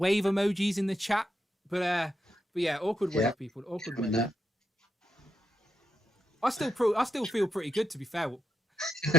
emojis in the chat. But yeah, awkward wave, people. Awkward wave. I still feel pretty good, to be fair.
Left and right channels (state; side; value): normal; both; correlation 0.83